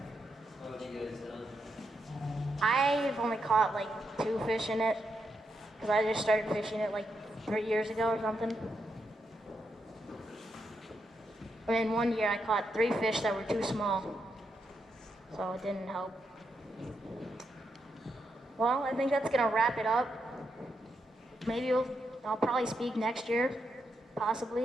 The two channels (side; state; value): both; normal; correlation 0.82